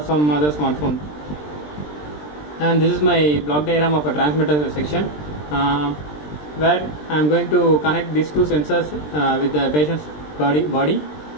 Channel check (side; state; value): right; late; 20 ms